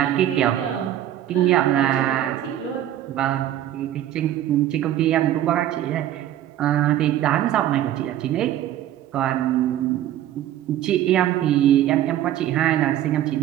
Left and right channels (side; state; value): left; quieter; 12.2 dB